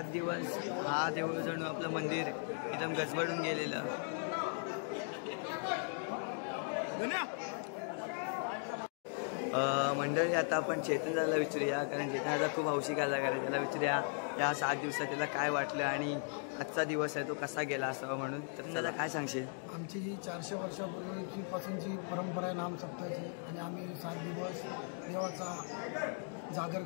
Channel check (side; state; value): right; silent; 53 dB below the other